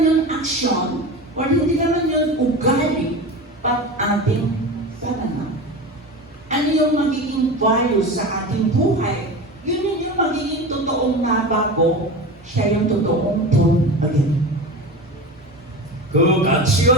yung action, or hindi naman yung ugali, but ating pananaw. Ano yung magiging value sa ating buhay? Yun yung magiging totoong nabago, siya yung totoong born again. 그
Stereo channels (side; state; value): both; normal; correlation 0.28